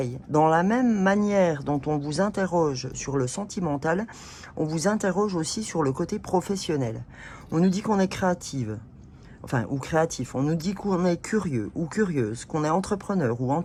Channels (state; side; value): identical; both; correlation 1.00